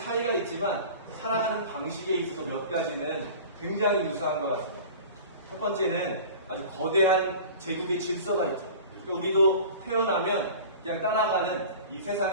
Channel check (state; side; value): inverted; both; correlation -0.39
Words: 있지만 살아가는 방식에 있어서 몇 가지는 굉장히 유사한 것 같습니다. 첫 번째는 아주 거대한 제국의 질서가 있죠. 그러니까 우리도 태어나면 그냥 따라가는 이